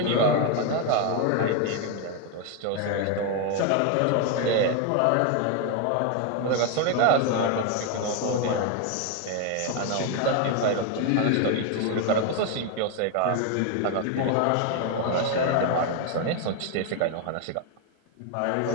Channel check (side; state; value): both; different; correlation 0.01